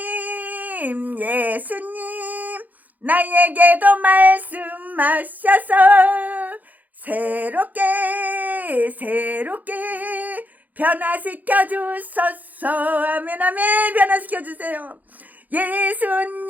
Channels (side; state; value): left; late; 0.081 ms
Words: 나에게도 말씀하셔서 새롭게 변화시켜 주소서. 아멘. 변화시켜 주세요.